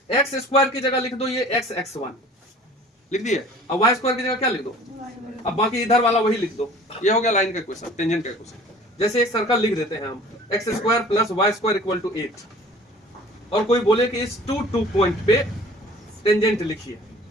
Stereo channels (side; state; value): both; normal; correlation 0.48